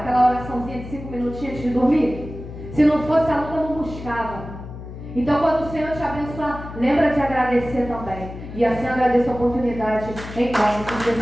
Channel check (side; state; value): left; noise; hum, 12 dB below the sound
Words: oraçãozinha de 5 minutinhos antes de dormir? Se não fosse a luta, eu não buscava. Então, quando o Senhor te abençoar, lembra de agradecer também. E assim agradeço a oportunidade em nome de